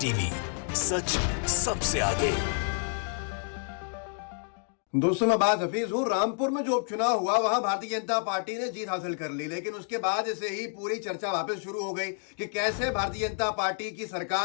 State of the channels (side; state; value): right; silent; 58 dB below the other